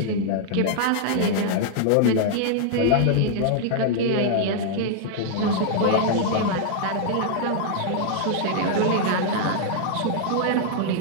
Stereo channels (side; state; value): both; different; correlation -0.01